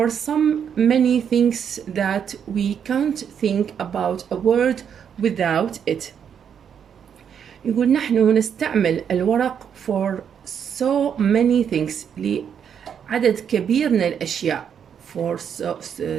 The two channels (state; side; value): quieter; left; 7.9 dB